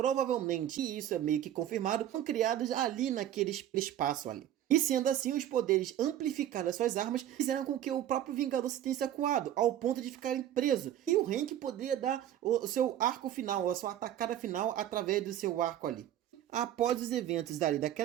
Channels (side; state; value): left; quieter; 11.5 dB